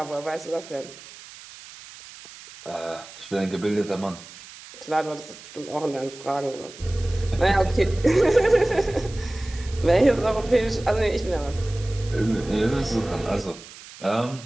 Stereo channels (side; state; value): right; noise; hiss, 17 dB below the sound